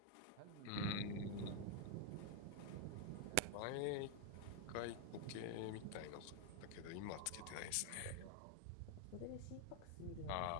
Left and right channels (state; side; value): different; both; correlation 0.00